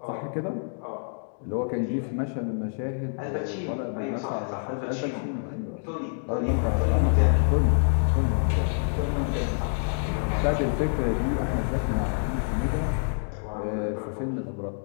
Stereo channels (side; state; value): right; silent; digital silence